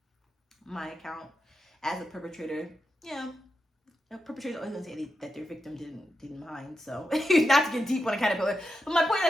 my account as a perpetrator, a perpetrator's always gonna say that their victim didn't mind. So not to get deep on a caterpillar, but my point is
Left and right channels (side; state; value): both; normal; correlation 0.88